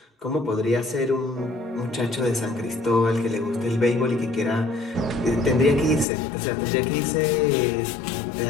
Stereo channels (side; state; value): right; drops out; at 6.1 s